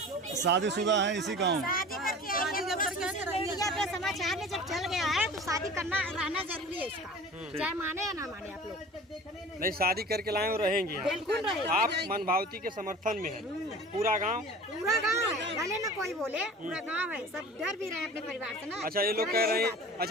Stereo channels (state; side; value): normal; both; correlation 0.40